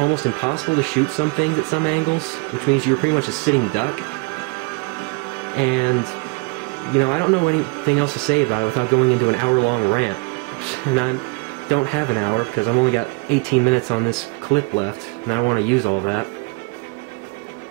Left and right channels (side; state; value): left; quieter; 30.4 dB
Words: impossible to shoot some things at some angles, which means you were pretty much a sitting duck. And, you know, I don't know anything else to say about it without going into an hour-long rant. And I don't have an hour because I've only got 18 minutes on this clip left, and I don't want to use all that.